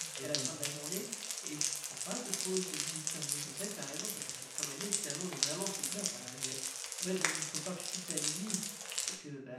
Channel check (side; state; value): both; identical; correlation 1.00